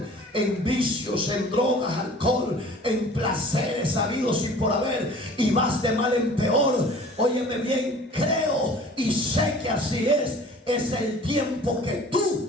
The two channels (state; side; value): normal; both; correlation 0.47